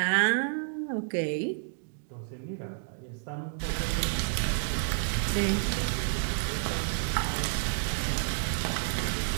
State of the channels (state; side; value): silent; left; digital silence